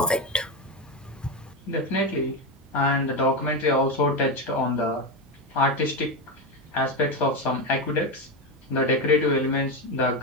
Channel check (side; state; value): both; normal; correlation 0.14